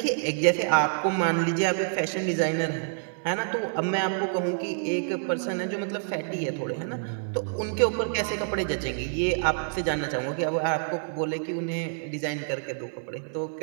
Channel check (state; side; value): silent; left; digital silence